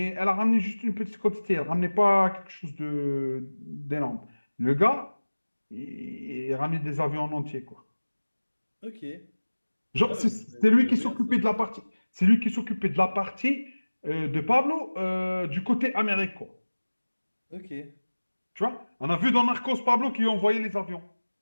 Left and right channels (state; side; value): inverted; both; correlation -1.00